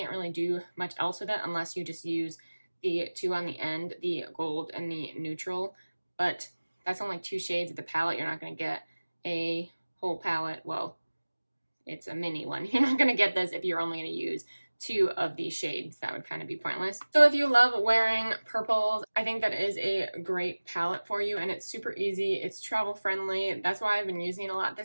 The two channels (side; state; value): both; inverted; correlation -1.00